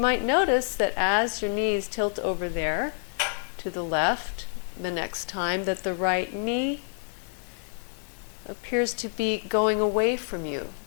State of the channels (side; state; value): right; silent; digital silence